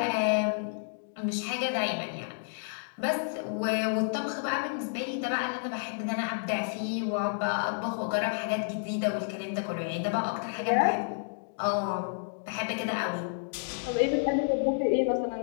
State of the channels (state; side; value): silent; right; digital silence